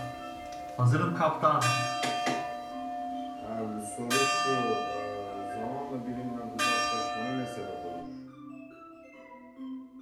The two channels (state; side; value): identical; both; correlation 1.00